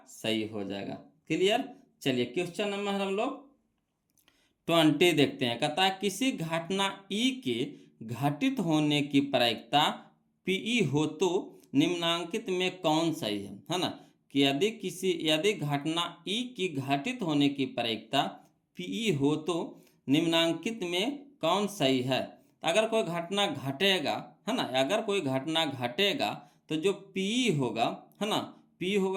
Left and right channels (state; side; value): identical; both; correlation 1.00